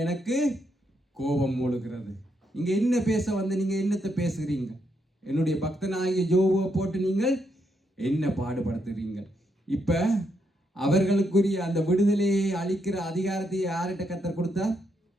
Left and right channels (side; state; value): both; normal; correlation 0.79